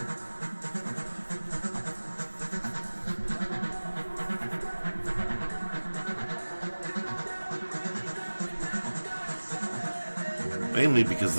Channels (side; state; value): both; inverted; correlation -1.00